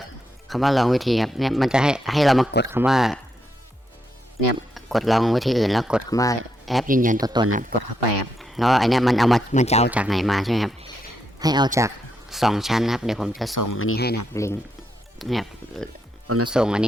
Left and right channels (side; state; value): both; normal; correlation 0.81